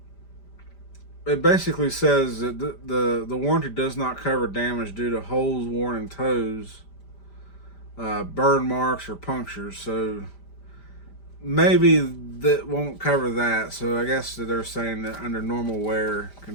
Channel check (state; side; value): late; right; 5.0 ms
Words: it basically says that the warranty does not cover damage due to holes worn in toes, burn marks, or punctures. So maybe that won't cover that. So I guess that they're saying that under normal wear